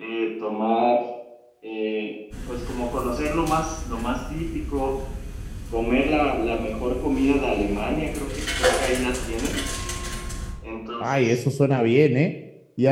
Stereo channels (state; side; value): identical; both; correlation 1.00